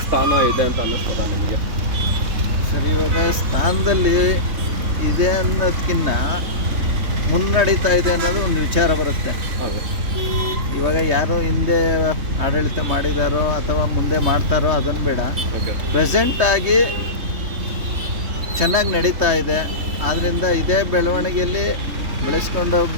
ಸ್ಥಾನ ಇದೆ ಅಂತ ಅನ್ನಿಸ್ತದ ನಿಮಗೆ? ಸರಿ, ಇವಾಗ ಸ್ಥಾನದಲ್ಲಿ ಇದೆ ಅನ್ನೋದಕ್ಕಿಂತ ಮುನ್ನಡೀತಾ ಇದೆ ಅನ್ನೋದು ಒಂದು ವಿಚಾರ ಬರುತ್ತೆ. ಹೌದು. ಇವಾಗ ಯಾರು ಹಿಂದೆ ಆಡಳಿತ ಮಾಡಿದಾರೋ ಅಥವಾ ಮುಂದೆ ಮಾಡ್ತಾರೋ ಅದನ್ನು ಬೇಡ, ಓಕೆ. ಪ್ರೆಸೆಂಟಾಗಿ ಚೆನ್ನಾಗಿ ನಡೀತಾ ಇದೆ. ಆದ್ದರಿಂದ ಇದೇ ಬೆಳವಣಿಗೆಯಲ್ಲಿ ಬೆಳೆಸ್ಕೊಂಡು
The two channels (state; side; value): late; left; 3.2 ms